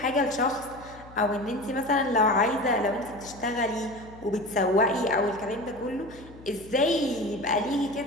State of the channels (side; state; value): left; noise; hum, 20 dB below the sound